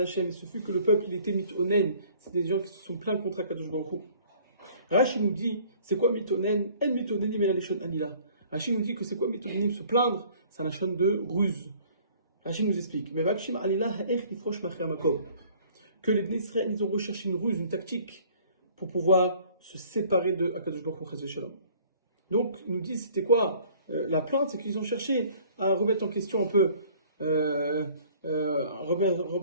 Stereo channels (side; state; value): both; inverted; correlation -0.54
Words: Hashem. Ce fut que le peuple, il était mitonen. C'est des gens qui se sont plaints contre Akadosh Baruch Hu. Rashi nous dit, c'est quoi mitonen? En mitonenim el lishon anila. Rashi nous dit que c'est quoi mitonenim? Se plaindre, c'est un lachon de ruse. Rashi nous explique, que les Bnei Israël, ils ont recherché une ruse, une tactique, pour pouvoir se séparer de Akadosh Baruch Hu. Donc, ils nous disent, c'était quoi la plainte? C'est qu'ils ont cherché à remettre en question un peu,